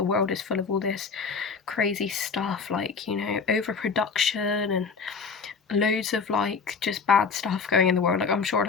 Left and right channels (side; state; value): right; quieter; 5.3 dB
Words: world is full of all this crazy stuff, like overproduction and loads of like just bad stuff going in the world. Like, I'm sure